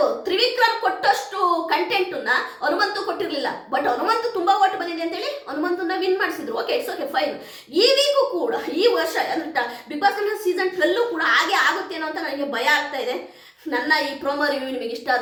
ತ್ರಿವಿಕ್ರಮ್ ಕೊಟ್ಟಷ್ಟು ಕಂಟೆಂಟನ್ನ ಹನುಮಂತು ಕೊಟ್ಟಿರ್ಲಿಲ್ಲ. ಬಟ್ ಹನುಮಂತು ತುಂಬಾ ಓಟ್ ಬಂದಿದೆ ಅಂತೇಳಿ ಹನುಮಂತನ ವಿನ್ ಮಾಡಿಸಿದ್ರು. Okay, it's okay, fine. ಈ ವೀಕು ಕೂಡ ಈ ವರ್ಷ ಅಂದ್ರೆ ಬಿಗ್ ಬಾಸ್ ಸೀಸನ್ 12 ಕೂಡ ಹಾಗೆ ಆಗುತ್ತೇನೋ ಅಂತ ನನಗೆ ಭಯ ಆಗ್ತಾ ಇದೆ. ನನ್ನ ಈ ಪ್ರೋಮೋ ರಿವ್ಯೂ ನಿಮಗೆ ಇಷ್ಟ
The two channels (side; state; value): both; identical; correlation 1.00